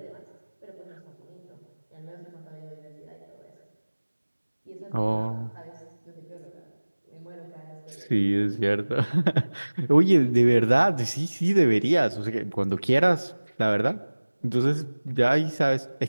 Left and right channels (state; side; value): inverted; both; correlation -1.00